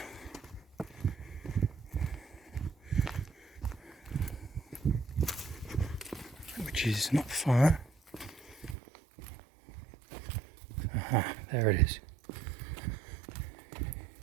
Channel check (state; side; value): drops out; left; at 8.8 s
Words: Which is not far. Aha, there it is.